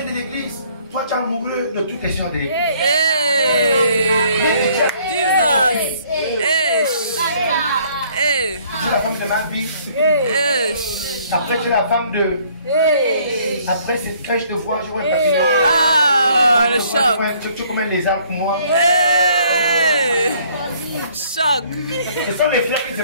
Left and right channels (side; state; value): both; inverted; correlation -0.61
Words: de l'église, toi tu es amoureux de toutes les sœurs de l'église. Hey! Jesus! Hey! Hey! Tu es la femme de ma vie. Hey! Après tu es la femme de... Après c'est quand je te vois, je vois le papier. Ah, le choc! Tu es comme un lézard pour moi. Hey! Choc! Ce sont les frères qui ne se